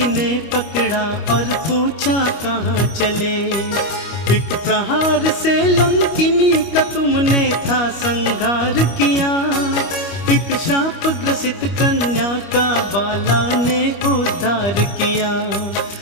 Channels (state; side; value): late; right; 25 ms